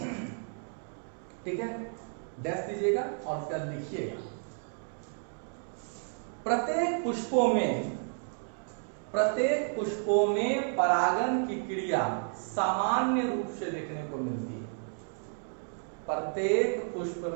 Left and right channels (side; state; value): left; silent; 57 dB below the other